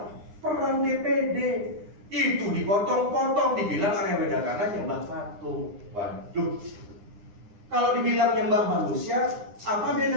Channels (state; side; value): late; left; 9.8 ms